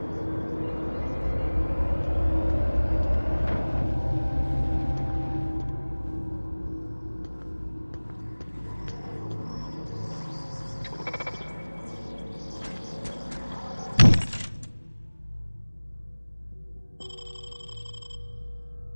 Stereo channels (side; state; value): both; inverted; correlation -1.00